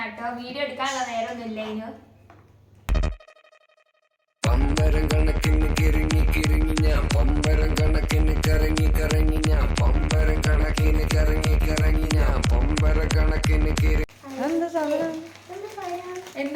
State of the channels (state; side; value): identical; both; correlation 1.00